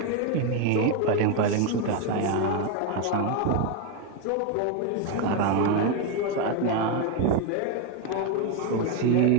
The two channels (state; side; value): different; both; correlation 0.02